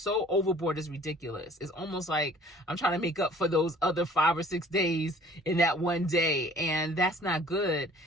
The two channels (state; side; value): normal; both; correlation 0.52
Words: overboard, it's ridiculous. It's almost like I'm trying to make up for those other 5 or 6 days in that one day, and that's not good.